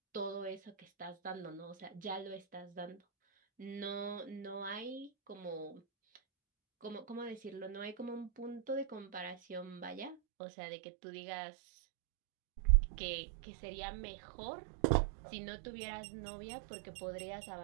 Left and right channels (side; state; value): left; drops out; at 10.2 s